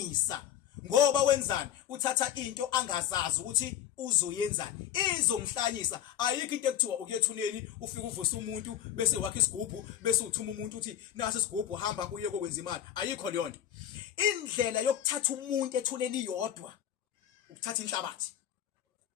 ngoba wenzani uthatha into angazazi ukuthi uzoyenzani izomhlanyisa ayikho into ekuthiwa ukuyethuneni ufike uvusa umuntu bese wakha isigubhu bese uthuma umuntu uthi nasi isigubhu hamba uye kokwenza imali ayikho leyo nto indlela yokuthatha umuntu ethuneni yodwa ukuthatha inhlabathi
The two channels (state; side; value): quieter; right; 10.7 dB